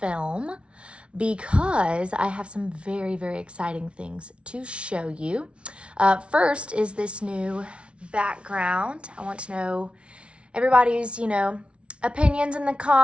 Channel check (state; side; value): late; left; 0.059 ms